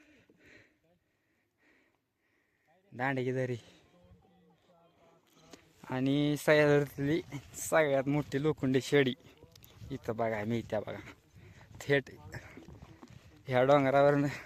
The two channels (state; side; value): identical; both; correlation 1.00